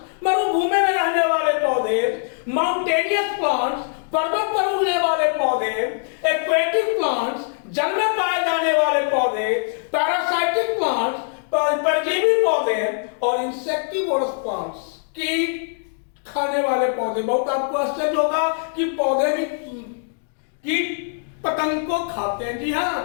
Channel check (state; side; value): silent; right; digital silence